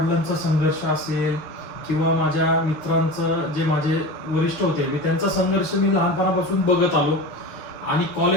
संघर्ष असेल किंवा माझ्या मित्रांचं जे माझे वरिष्ठ होते मी त्यांचा संघर्ष मी लहानपणापासून बघत आलो. आणि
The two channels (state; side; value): late; right; 6.4 ms